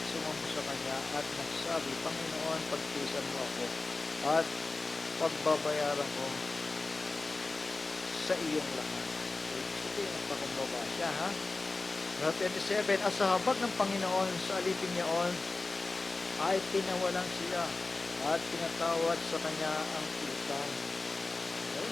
sumamba sa kanya at nagsabi, Panginoon, pagtiisan mo ako at pagbabayaran ko sa iyong lahat. Sige, nagpakumbaba siya, ha? Sa 27, at sa habag ng Panginoon sa alipin niyaon ay tinawalan siya at pinatawad sa kanya ang utang. Okay?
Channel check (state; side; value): quieter; right; 3.5 dB